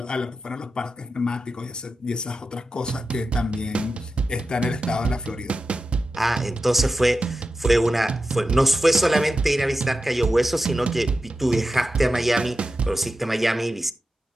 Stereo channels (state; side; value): normal; both; correlation 0.92